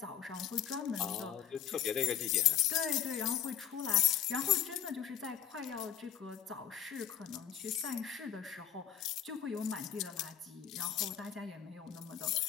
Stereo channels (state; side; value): quieter; right; 9.8 dB